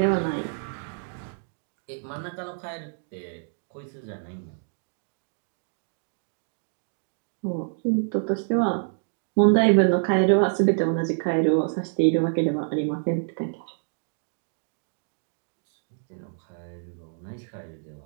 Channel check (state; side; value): silent; left; digital silence